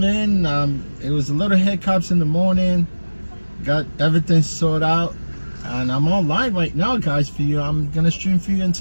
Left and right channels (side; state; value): both; inverted; correlation -1.00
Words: in. It was a little hiccups in the morning. Got everything sorted out, and I'm online right now, guys, for you. I'm gonna stream for you